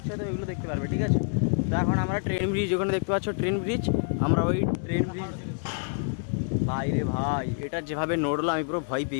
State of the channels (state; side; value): silent; right; 59 dB below the other